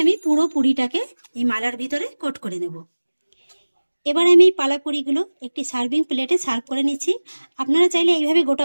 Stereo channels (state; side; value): inverted; both; correlation -1.00